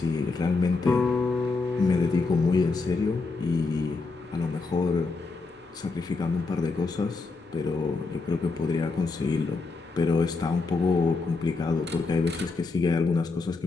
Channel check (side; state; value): right; quieter; 3.9 dB